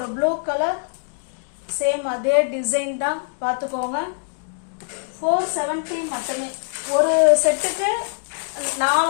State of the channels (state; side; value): silent; right; digital silence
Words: ப்ளூ கலர், சேம் அதே டிசைன் தான், பார்த்துக்கோங்க. 470 மட்டுமே. ஒரு செட்டுக்கு 4